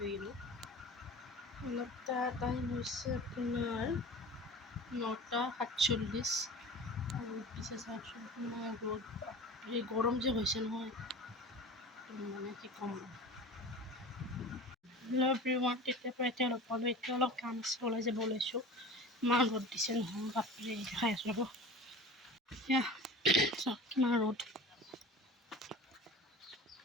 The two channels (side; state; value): both; normal; correlation 0.36